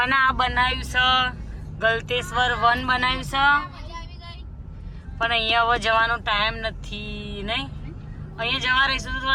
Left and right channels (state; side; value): identical; both; correlation 1.00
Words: અને આ બનાવ્યું છે ગલતેશ્વર વન બનાવ્યું છે, પણ અહીંયા હવે જવાનો ટાઈમ નથી નહીં. અહીંયા જવા રહીશું તો